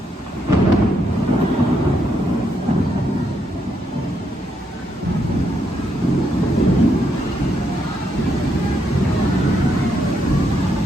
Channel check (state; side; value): normal; both; correlation 0.77